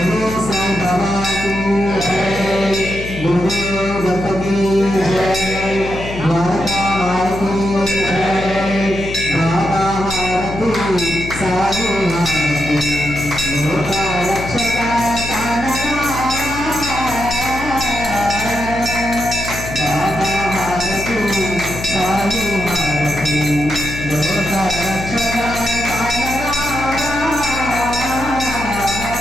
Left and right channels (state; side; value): noise; left; hum, 9 dB below the sound